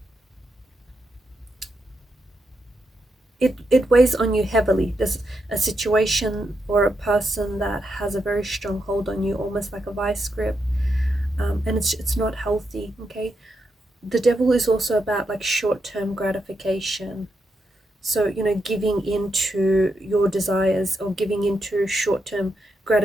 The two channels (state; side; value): normal; both; correlation 0.83